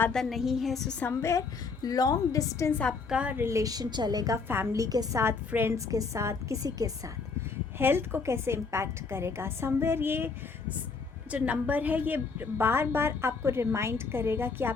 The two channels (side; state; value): right; quieter; 4.7 dB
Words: नहीं है। सो समवेयर लॉन्ग डिस्टेंस आपका रिलेशन चलेगा फैमिली के साथ, फ्रेंड्स के साथ, किसी के साथ। हेल्थ को कैसे इम्पैक्ट करेगा? समवेयर ये जो नंबर है ये बार बार आपको रिमाइंड करेगा कि